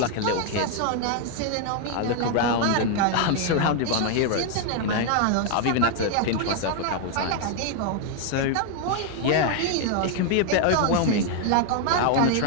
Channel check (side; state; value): both; different; correlation 0.00